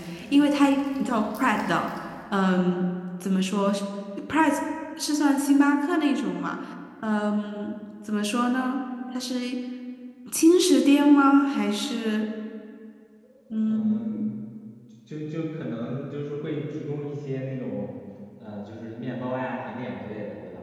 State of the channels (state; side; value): identical; both; correlation 1.00